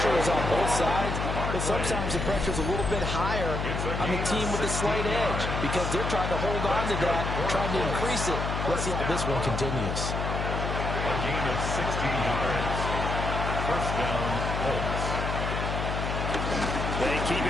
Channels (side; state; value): left; noise; hum, 2 dB below the sound